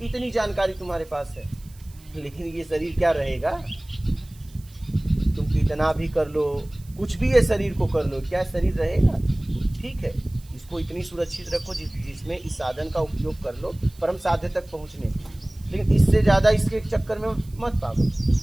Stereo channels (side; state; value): right; noise; hiss, 26 dB below the sound